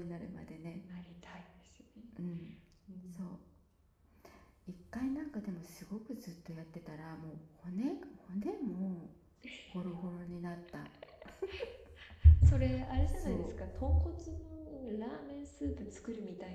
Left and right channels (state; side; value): identical; both; correlation 1.00